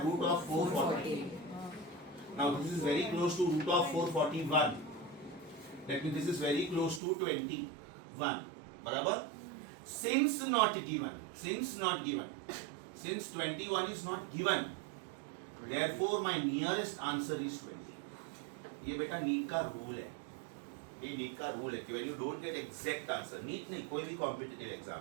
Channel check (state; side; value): drops out; left; at 7.0 s